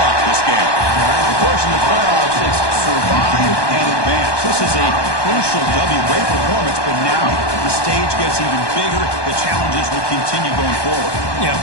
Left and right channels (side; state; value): right; late; 1.2 ms